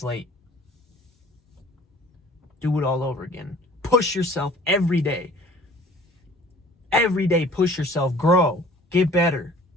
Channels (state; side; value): normal; both; correlation 0.49